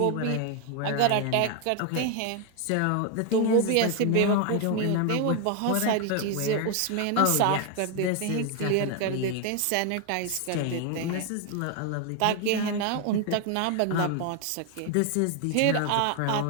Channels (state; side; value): different; both; correlation 0.01